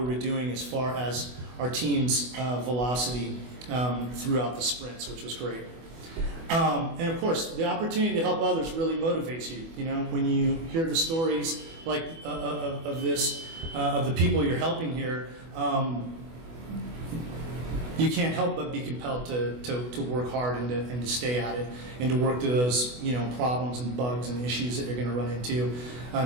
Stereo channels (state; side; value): late; left; 24 ms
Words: were doing as far as our team's velocity throughout the sprints, which was great. And of course, the opportunity to help others really motivates you. You know, when you hear the stories like of this, of the people you're helping here, you can't help but be compelled to work hard and to stay at it and to work through those, you know, problems and bugs and issues that you're going to run into